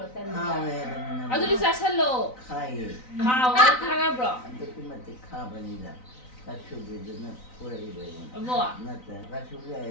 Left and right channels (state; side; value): late; right; 3.9 ms